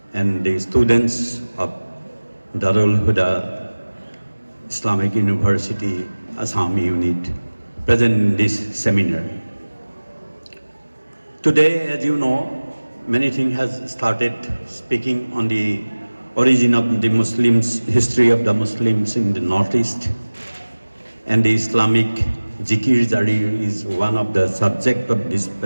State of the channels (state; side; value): inverted; both; correlation -1.00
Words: and the students of Darul Huda Islamic University Assam unit present in this seminar. Today, as you know, many things has started speaking on the origin of the Muslims, history of the Muslims in the Northeast, and the Islamic Zikir Jari is one of the subject of this